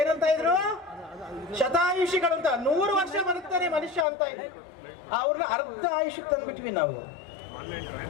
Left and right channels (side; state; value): right; drops out; at 4.0 s